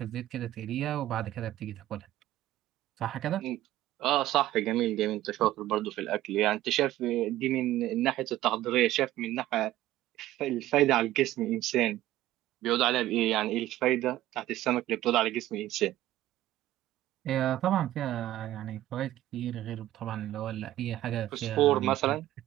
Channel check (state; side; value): quieter; left; 14.6 dB